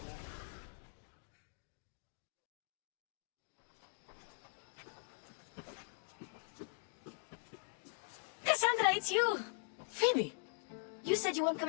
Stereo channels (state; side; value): silent; right; digital silence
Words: Cassandra, it's you! Phoebe! You said you weren't